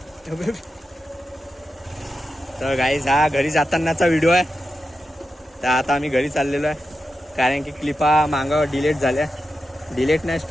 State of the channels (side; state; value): both; normal; correlation 0.89